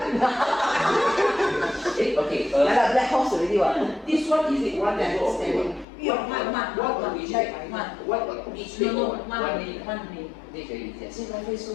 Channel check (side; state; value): right; drops out; at 5.9 s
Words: Okay, Yeah, lah, black horse already what? this one is it one level or two? What which what each level? One only. This very easy. 现在会说